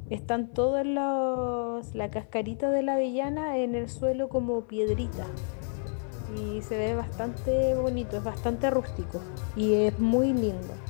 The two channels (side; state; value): right; silent; 58 dB below the other